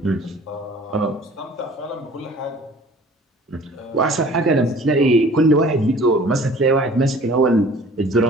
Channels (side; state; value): both; normal; correlation 0.49